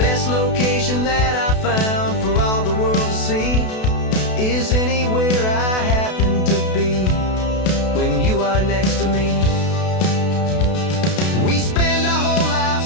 location that I found for all the world to see is anywhere I happen to be when you are next to me. We spend our whole life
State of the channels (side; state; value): right; late; 32 ms